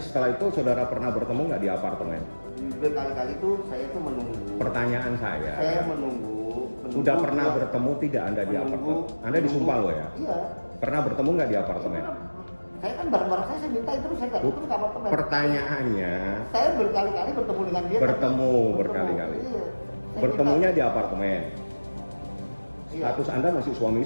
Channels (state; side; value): inverted; both; correlation -1.00